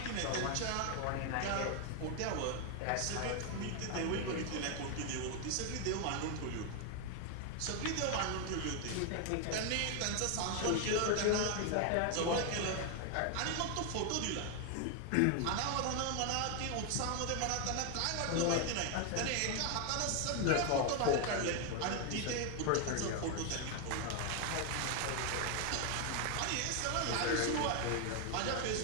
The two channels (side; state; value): both; different; correlation 0.01